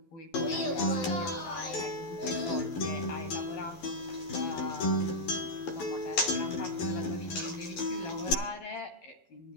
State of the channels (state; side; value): late; right; 12 ms